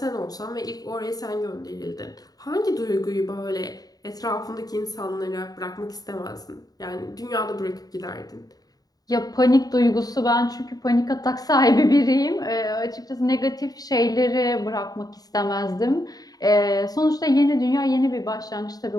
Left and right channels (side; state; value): right; late; 0.18 ms